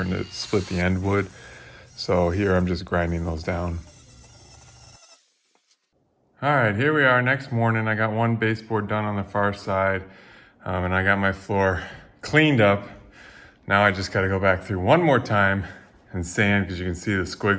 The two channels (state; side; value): identical; both; correlation 1.00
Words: to split the end wood. So here I'm just grinding those down. All right, here we are next morning. I got one baseboard done on the far side, and I got my floor cleaned up. Now I just got to go back through one more time and sand, because you can see the